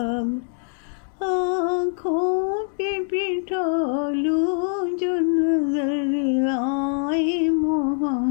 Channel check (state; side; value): silent; right; 59 dB below the other